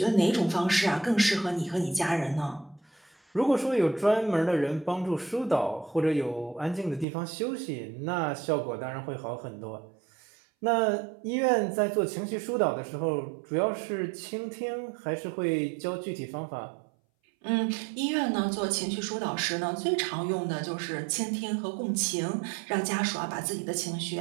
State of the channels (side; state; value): left; drops out; at 7.1 s